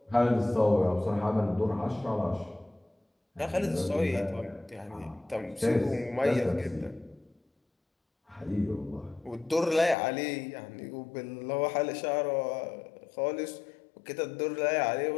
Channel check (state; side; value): drops out; right; at 10.0 s